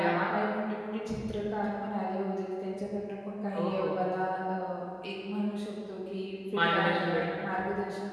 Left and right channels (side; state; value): both; identical; correlation 1.00